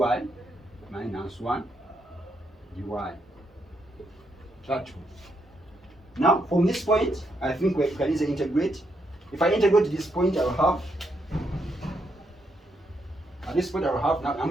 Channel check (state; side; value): normal; both; correlation 0.78